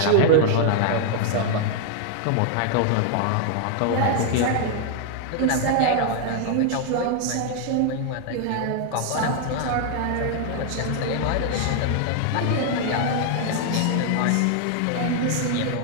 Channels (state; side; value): different; both; correlation 0.00